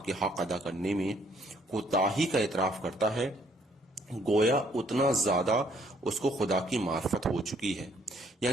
کے حق ادا کرنے میں کوتاہی کا اعتراف کرتا ہے، گویا اتنا زیادہ اس کو خدا کی معرفت ہو چکی ہے۔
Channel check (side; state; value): both; normal; correlation 0.65